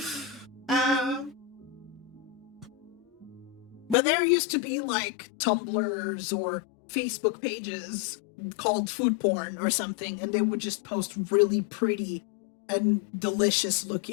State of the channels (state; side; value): drops out; right; at 4.0 s